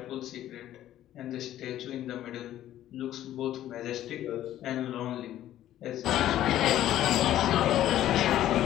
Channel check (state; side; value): quieter; right; 12.8 dB